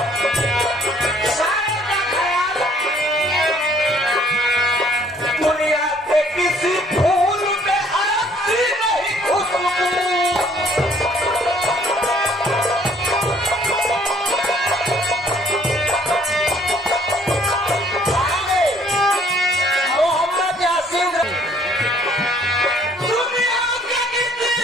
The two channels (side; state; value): both; normal; correlation 0.61